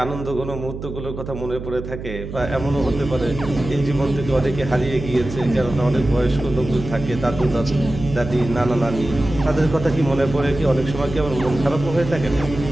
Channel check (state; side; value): noise; right; hum, 9 dB below the sound